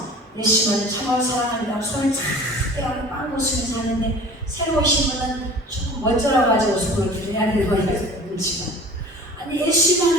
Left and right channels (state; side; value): normal; both; correlation 0.43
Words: 예수만을 정말 사랑한다고 손을 착 떼고 빵 웃으면서 하는데, 새로 오신 분은 조금 멋져라 가지고 손을 들여야 되는 거야. 눈치 봐. 아니,